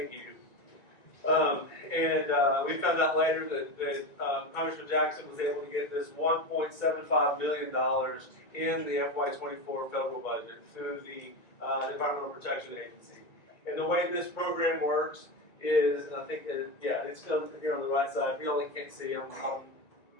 you. We found out later that Congressman Jackson was able to get this $1.75 million in the FY24 federal budget through the Environmental Protection Agency. And the way this program works is, and I think that, yeah, it's still here on the right side. If you only can't see, I'm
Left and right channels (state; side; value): late; right; 1.9 ms